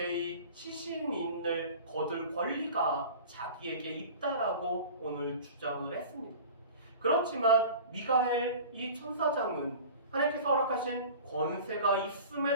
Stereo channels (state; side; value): inverted; both; correlation -0.39